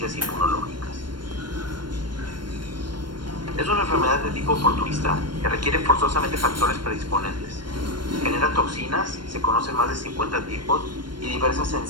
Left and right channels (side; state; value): left; late; 0.72 ms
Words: inmunológicas. Es una enfermedad de tipo oportunista que requiere forzosamente factores predisponentes. Genera toxinas, se conocen más de 50 tipos y diversas